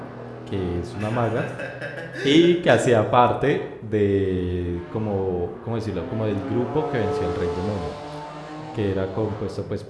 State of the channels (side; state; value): both; identical; correlation 1.00